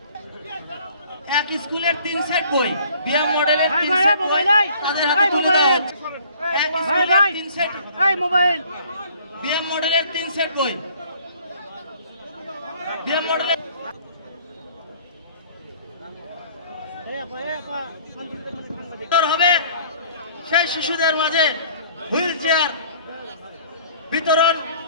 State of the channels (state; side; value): inverted; both; correlation -0.54